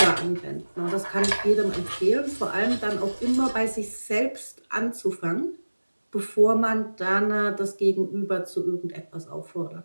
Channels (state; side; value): inverted; both; correlation -1.00